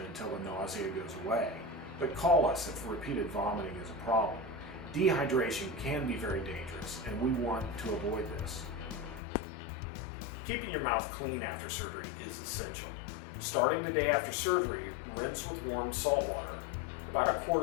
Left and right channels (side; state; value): right; drops out; at 9.2 s